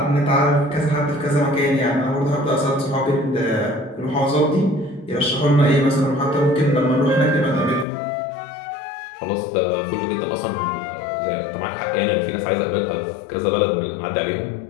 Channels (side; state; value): right; drops out; at 7.9 s